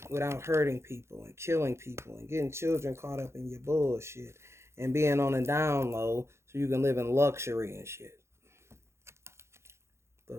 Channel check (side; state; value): left; late; 0.13 ms